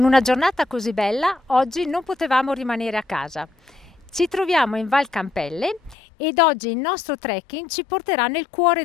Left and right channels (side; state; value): right; drops out; at 6.0 s